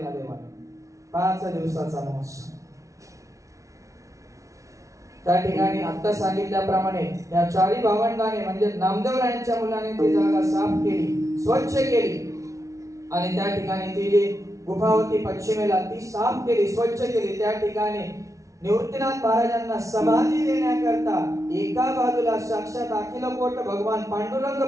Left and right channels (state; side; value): late; left; 0.15 ms